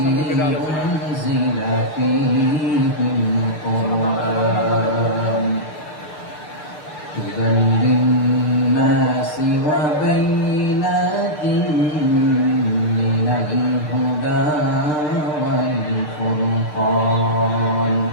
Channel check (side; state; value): right; late; 6.6 ms